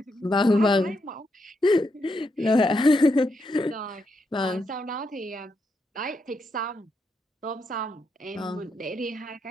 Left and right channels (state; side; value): normal; both; correlation 0.81